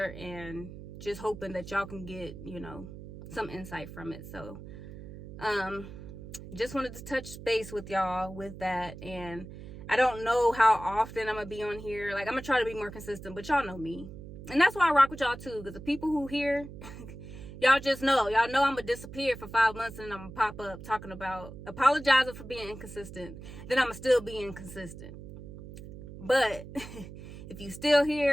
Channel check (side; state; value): right; noise; hum, 13 dB below the sound